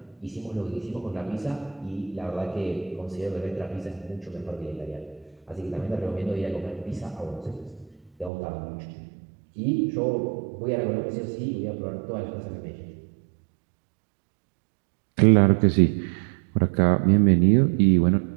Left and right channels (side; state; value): left; drops out; at 8.3 s